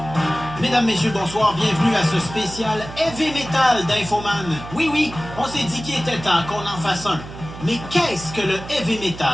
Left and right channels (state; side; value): noise; right; hum, 13 dB below the sound